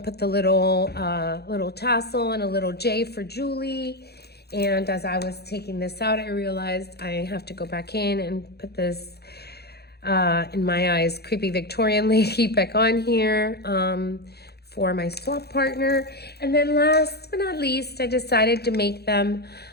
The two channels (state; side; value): late; right; 0.47 ms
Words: put the little tassel and a little J for Julie. And as I was taking this out, I realized I have to go back in and put this, in my eyes, creepy Victorian lady back on here for my swap partner. And then last but not least, I decided to make them